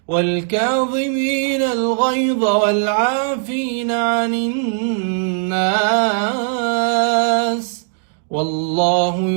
والكاظمين الغيظ والعافين عن الناس والله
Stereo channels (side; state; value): left; silent; 64 dB below the other